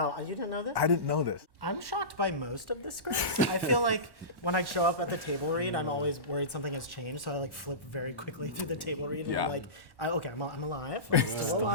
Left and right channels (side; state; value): left; late; 1.1 ms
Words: You didn't know this? I didn't know this. I'm shocked by most of the scripts. I feel like when I show up at the table read, I'm always worried something has changed, so I like flip very quickly through the table read. And I'm like, okay, I'm alive. I'm still